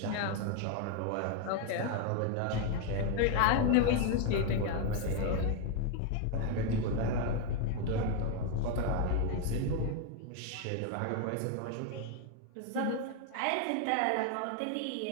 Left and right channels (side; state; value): both; different; correlation 0.01